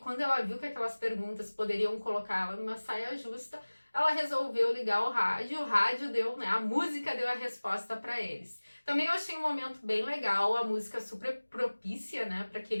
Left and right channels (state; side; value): inverted; both; correlation -1.00